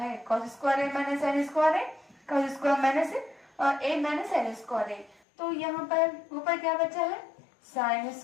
cos square A minus sine square A, cos square minus A minus sine square ए, तो यहाँ पर ऊपर क्या बचा है, साइन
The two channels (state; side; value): drops out; right; at 5.2 s